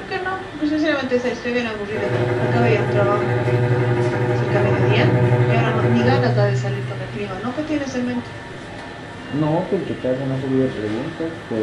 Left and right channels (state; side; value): identical; both; correlation 1.00